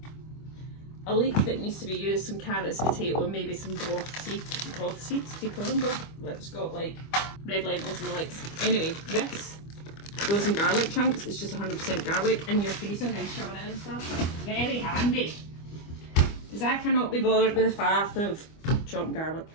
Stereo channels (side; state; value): right; late; 25 ms